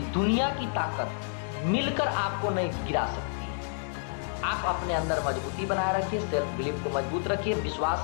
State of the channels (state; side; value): silent; right; digital silence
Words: दुनिया की ताकत मिलकर आपको नहीं गिरा सकती है। आप अपने अंदर मजबूती बनाए रखिए, सेल्फ बिलीफ को मजबूत रखिए,